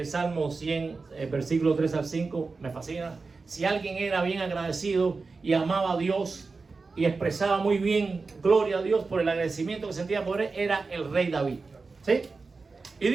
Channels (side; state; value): left; quieter; 4.2 dB